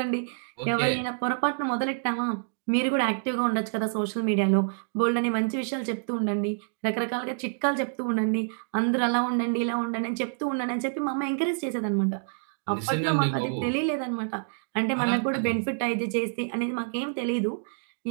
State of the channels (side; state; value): left; silent; digital silence